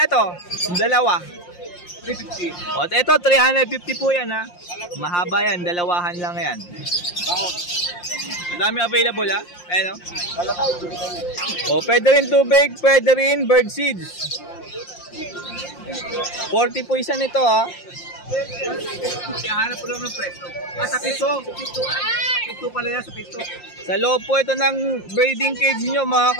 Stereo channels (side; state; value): right; late; 5.7 ms